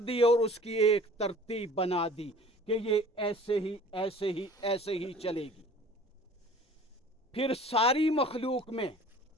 दी, और उसकी एक तरतीब बना दी कि ये ऐसे ही ऐसे ही ऐसे ही चलेगी। फिर सारी मखलूक में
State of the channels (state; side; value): normal; both; correlation 0.47